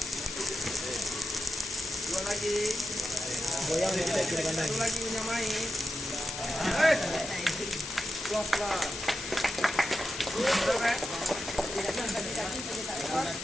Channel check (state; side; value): noise; left; hiss, 7 dB below the sound